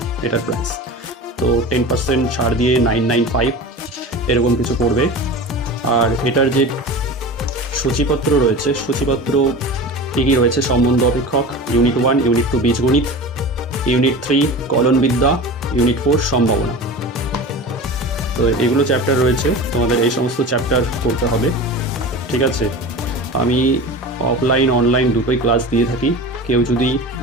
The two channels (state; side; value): normal; both; correlation 0.32